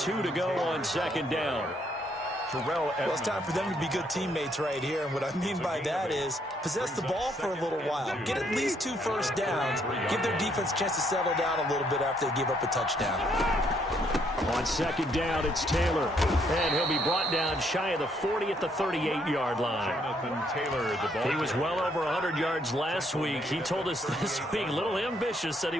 to go on 2nd down. Well, it's time for them to be good teammates right here. And what I mean by that is possess the ball for a little while. Get at least 2 first downs. Give their defense a chance to settle down a little bit after they give up a touchdown. On 2nd down, it's Taylor. And he'll be brought down shy of the 40 at the 38-yard line. Jonathan Taylor, the ball. He was well over 100 yards last week. He told us this week, a little ambitious, said he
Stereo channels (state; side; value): normal; both; correlation 0.71